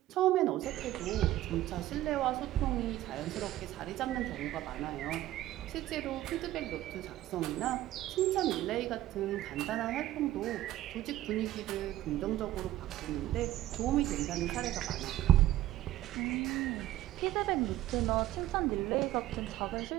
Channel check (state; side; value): quieter; left; 14.4 dB